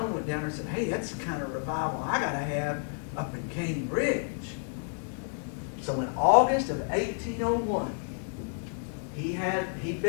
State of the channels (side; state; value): right; silent; 58 dB below the other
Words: went down there and said, hey, that's the kind of revival I got to have up in Cane Ridge. So in August of 1801, he'd